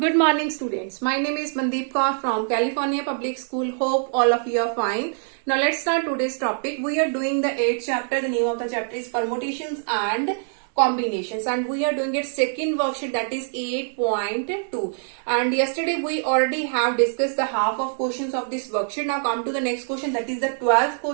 morning, students. My name is Mandeep Kaur from California Public School. Hope all of you are fine. Now let's start today's topic. We are doing the 8th chapter. The name of the chapter is Permutations and Combinations, and we are doing it second worksheet, that is 8.2. And yesterday we already have discussed the half of questions of this worksheet. Now come to the next question, that is the 12th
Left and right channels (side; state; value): left; silent; digital silence